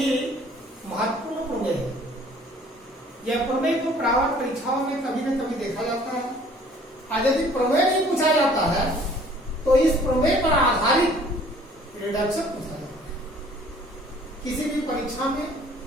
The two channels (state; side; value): normal; both; correlation 0.55